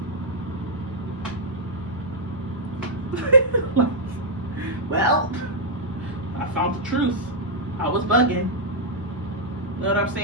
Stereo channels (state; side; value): normal; both; correlation -0.07